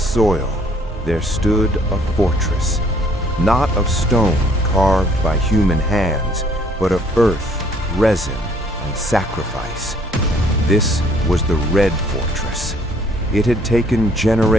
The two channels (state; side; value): normal; both; correlation 0.61